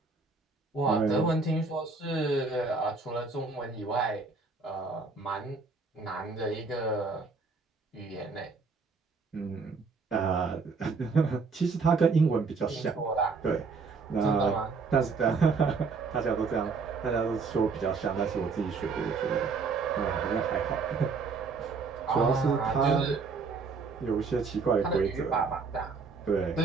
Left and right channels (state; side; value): quieter; left; 4.6 dB